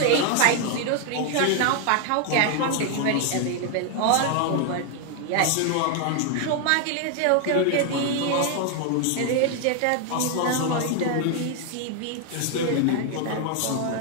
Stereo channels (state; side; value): different; both; correlation 0.00